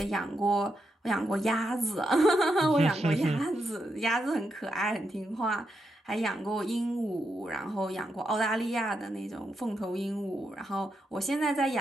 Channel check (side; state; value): both; normal; correlation 0.83